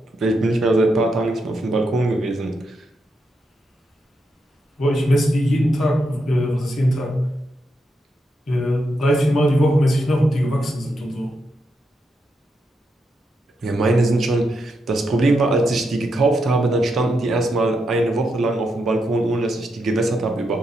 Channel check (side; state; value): both; normal; correlation 0.83